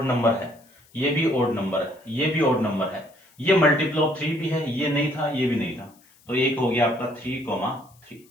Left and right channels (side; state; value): left; noise; hiss, 30 dB below the sound